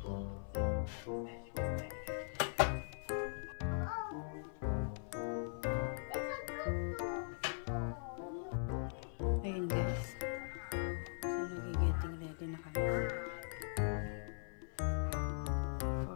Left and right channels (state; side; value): silent; right; 51 dB below the other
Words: Ayun guys, so nag-getting ready na kami for